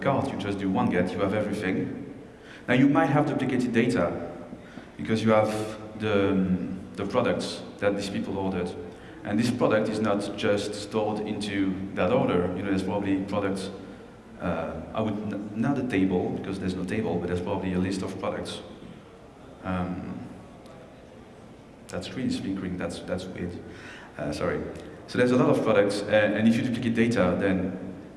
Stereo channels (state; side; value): identical; both; correlation 1.00